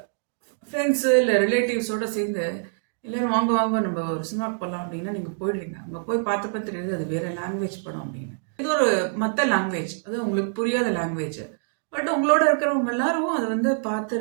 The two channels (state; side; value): silent; left; digital silence